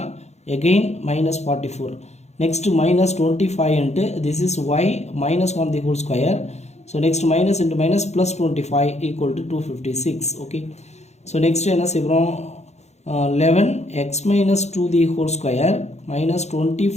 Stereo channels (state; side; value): late; right; 0.32 ms